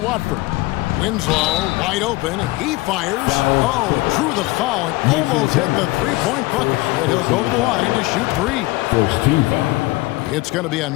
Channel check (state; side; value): quieter; right; 21.0 dB